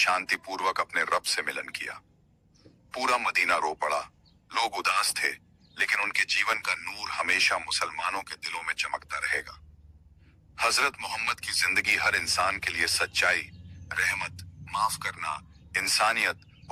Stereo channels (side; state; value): both; identical; correlation 1.00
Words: अपने रब से मिलन किया। पूरा मदीना रो पड़ा। लोग उदास थे, लेकिन उनके जीवन का नूर हमेशा मुसलमानों के दिलों में चमकता रहेगा। हजरत मोहम्मद की जिंदगी हर इंसान के लिए सच्चाई, रहमत, माफ करना, इंसानियत